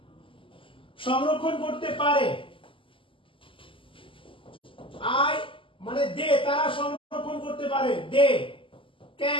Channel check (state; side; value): late; right; 0.25 ms